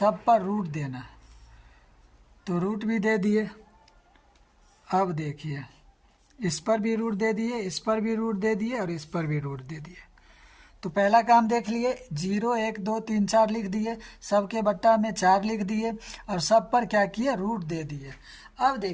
पर रूट देना। तो रूट भी दे दिए। अब देखिए इस पर भी रूट दे दिए, इस पर भी रूट दे दिए और इस पर भी रूट दे दिए। तो पहला काम देख लिए, 0, 1, 2, 3, 4 लिख दिए, सबके बट्टा में 4 लिख दिए और सब पर क्या किए, रूट दे दिए। अब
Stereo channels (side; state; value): both; identical; correlation 1.00